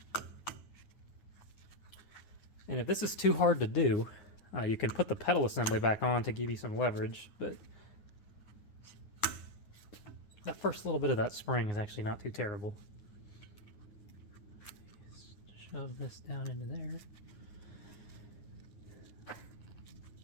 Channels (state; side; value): late; right; 9.8 ms